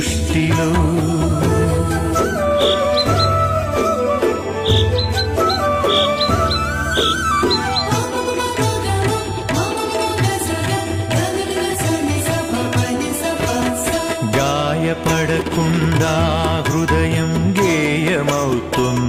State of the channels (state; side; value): identical; both; correlation 1.00